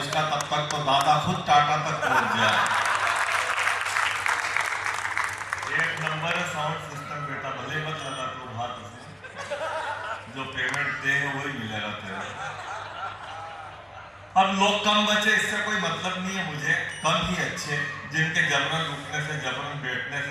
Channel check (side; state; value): both; identical; correlation 1.00